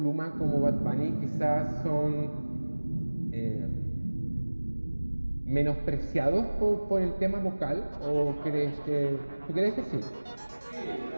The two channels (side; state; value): both; inverted; correlation -1.00